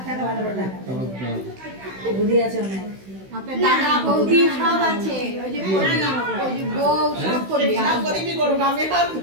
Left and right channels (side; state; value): left; late; 16 ms